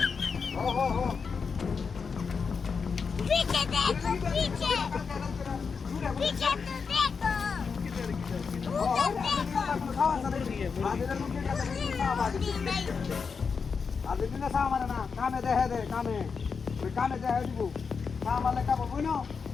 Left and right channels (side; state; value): right; quieter; 5.5 dB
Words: पीछे देखो पीछे पीछे तो देखो আদিন না সামার না কামে দেহে দে কামে ওই কামে দেহে দিব সামালে কাম বই না